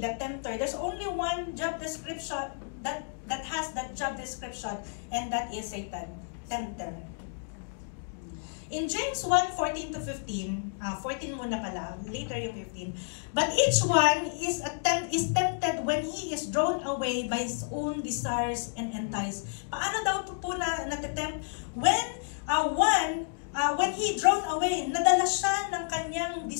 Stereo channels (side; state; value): right; silent; digital silence